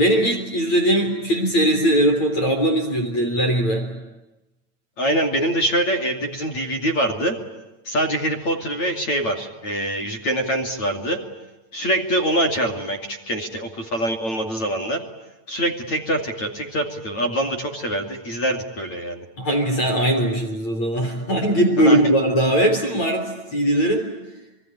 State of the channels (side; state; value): right; late; 8.9 ms